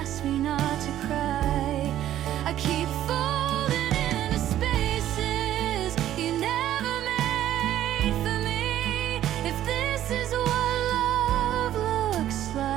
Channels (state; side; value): quieter; left; 12.3 dB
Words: me not to cry. I keep folding into spaces you never made for me. If this is what love looks